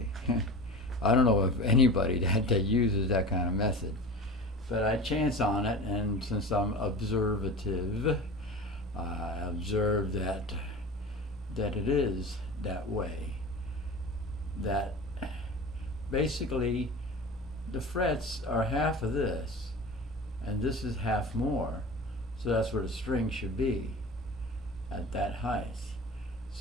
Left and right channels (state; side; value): normal; both; correlation 0.34